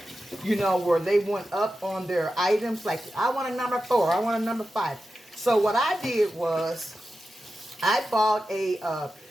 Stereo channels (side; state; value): both; normal; correlation 0.91